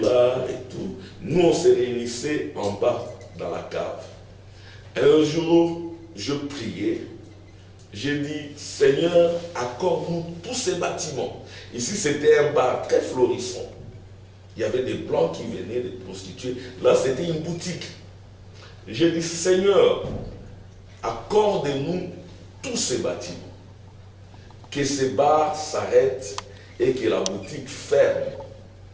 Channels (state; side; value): identical; both; correlation 1.00